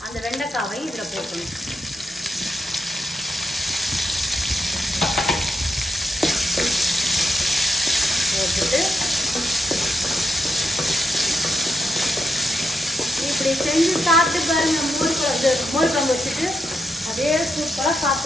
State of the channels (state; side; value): normal; both; correlation 0.83